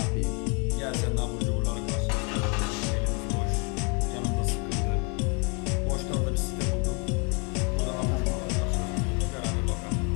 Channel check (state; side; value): quieter; right; 34.1 dB